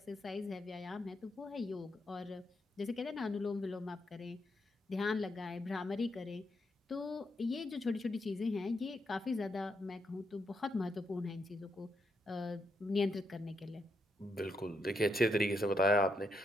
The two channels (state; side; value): normal; both; correlation 0.79